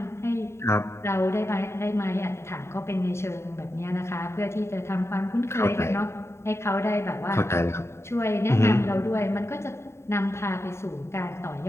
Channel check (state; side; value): late; right; 0.13 ms